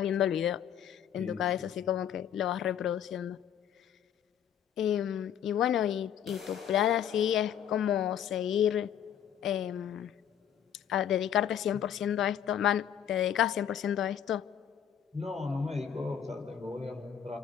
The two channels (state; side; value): quieter; right; 9.5 dB